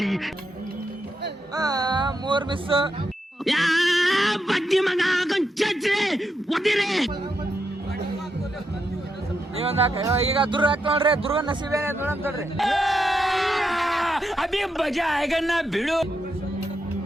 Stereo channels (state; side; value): normal; both; correlation 0.83